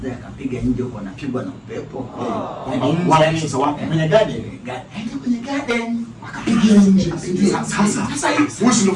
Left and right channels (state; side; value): identical; both; correlation 1.00